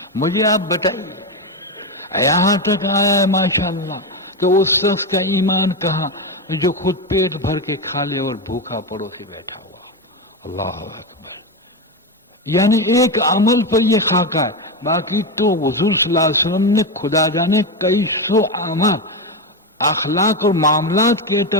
مجھے آپ بتائیے۔ یہاں تک آیا ہے ماشاءاللہ کہ اس شخص کا ایمان کہاں جو خود پیٹ بھر کے کھا لے اور بھوکا پڑوسی بیٹھا ہوا۔ اللہ اکبر، یعنی ایک عمل پر یہ خاکہ ہے، باقی تو حضور صلی اللہ علیہ وسلم نے خدا جانے کئی سو اعمال اخلاق اور معاملات کے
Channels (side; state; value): both; normal; correlation 0.12